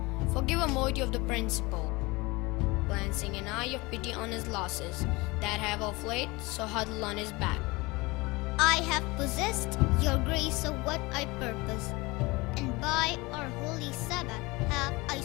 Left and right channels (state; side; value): quieter; right; 23.5 dB